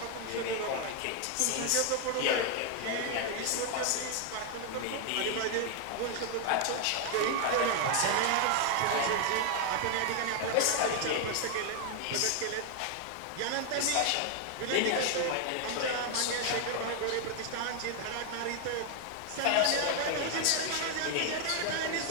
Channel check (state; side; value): different; both; correlation 0.00